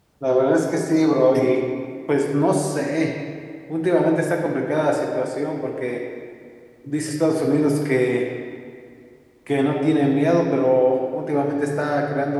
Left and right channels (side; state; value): both; identical; correlation 1.00